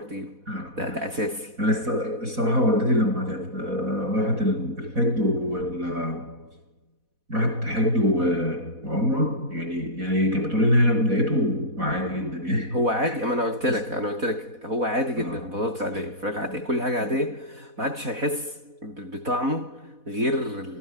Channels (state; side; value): late; left; 4.1 ms